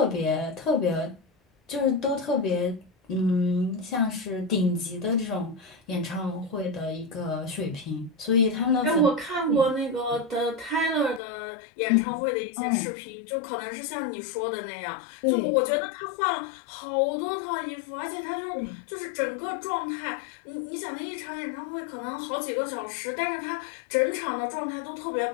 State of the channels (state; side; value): drops out; right; at 11.2 s